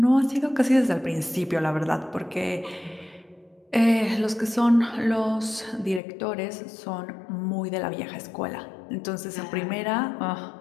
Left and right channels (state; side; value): drops out; right; at 6.0 s